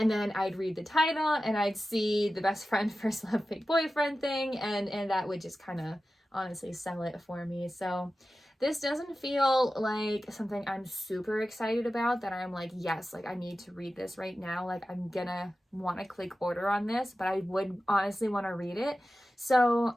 then I'd read the title, and I'd see the best friend, first love, fake boyfriend thing, and that would just kind of honestly sell it for me. So this doesn't feel like something I'm super excited about, that I'm like, yes, like I need to read this right now. Like I'm gonna want to click order on this, but I would honestly want to read it.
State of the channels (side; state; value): both; normal; correlation 0.94